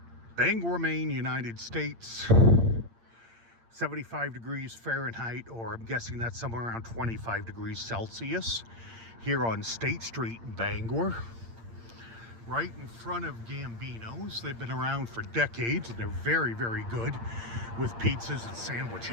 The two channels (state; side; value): late; left; 8.7 ms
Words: Bangor, Maine, United States. 75 degrees Fahrenheit, or I'm guessing that's somewhere around 25 degrees Celsius. Here on State Street in Bangor. Right in front of Gambino's. They've been around for decades and they're very, very good with pizzas and